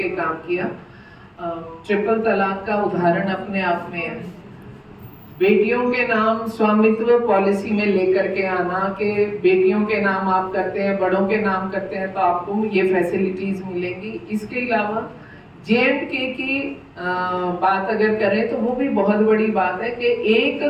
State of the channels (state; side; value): identical; both; correlation 1.00